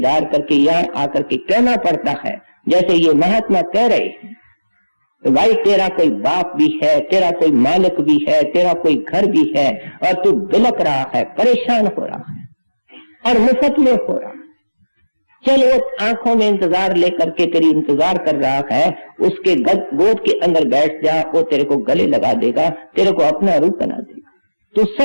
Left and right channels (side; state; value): both; inverted; correlation -1.00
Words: करके यहाँ आकर के कहना पड़ता है, जैसे ये महात्मा कह रहे हैं, भाई तेरा कोई बाप भी है, तेरा कोई मालिक भी है, तेरा कोई घर भी है, और तू बिलक रहा है, परेशान हो रहा है और मुफ्त में हो रहा है। चल वो आंखों में इंतजार लेकर के तेरी इंतजार कर रहा है, उसके गोद के अंदर बैठ जा, वो तेरे को गले लगा देगा, तेरे को अपना रूप बना देगा। तू